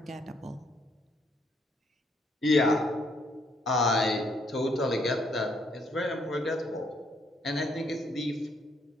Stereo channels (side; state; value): both; normal; correlation 0.70